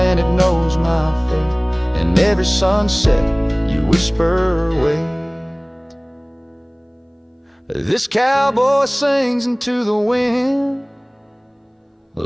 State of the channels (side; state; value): both; identical; correlation 1.00